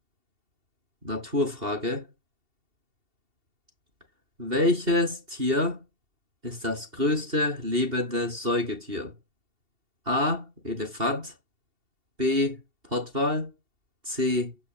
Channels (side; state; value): left; late; 2.7 ms